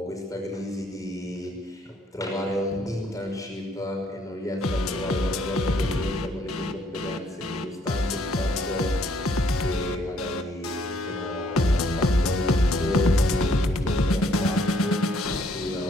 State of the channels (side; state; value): both; normal; correlation 0.66